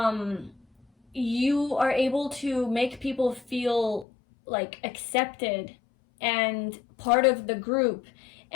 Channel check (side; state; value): right; drops out; at 4.0 s